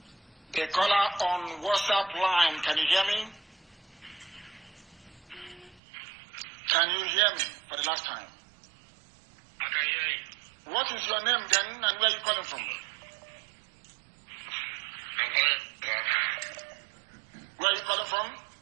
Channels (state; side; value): drops out; left; at 5.8 s